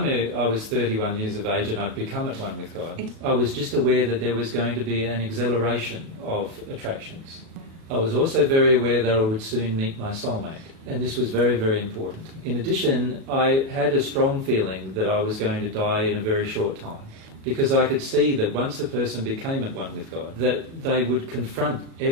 I was 31 years of age and I'd become at one with God, I was just aware that there was going to be an acceleration of attractions. I was also very aware that I would soon meet my soulmate, and this was very, very important. In addition, I had a strong feeling that I was going to die in a very short time, because I could see that once a person became at one with God, that they would confront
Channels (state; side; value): late; left; 37 ms